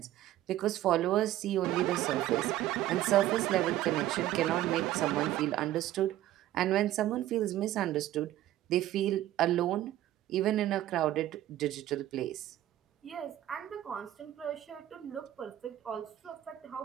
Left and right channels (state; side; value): quieter; left; 13.8 dB